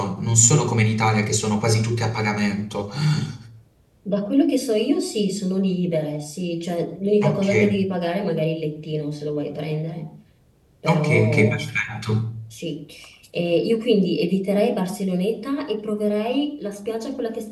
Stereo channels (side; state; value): both; identical; correlation 1.00